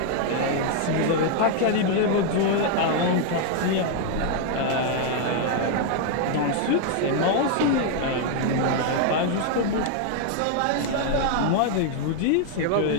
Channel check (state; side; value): different; both; correlation 0.00